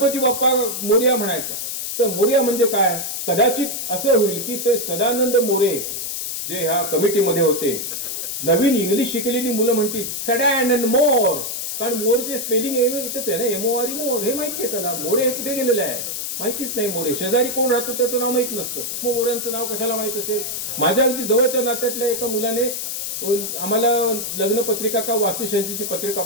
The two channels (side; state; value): left; noise; hiss, 4 dB below the sound